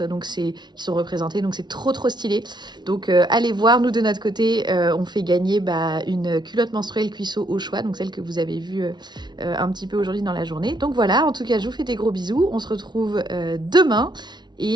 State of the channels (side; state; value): left; late; 0.20 ms